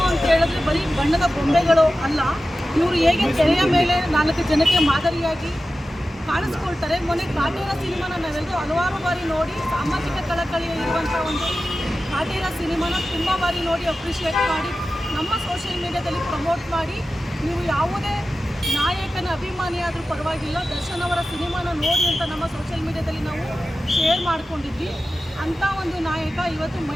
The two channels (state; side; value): normal; both; correlation 0.94